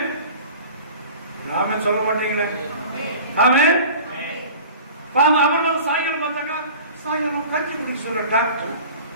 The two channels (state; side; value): inverted; both; correlation -0.41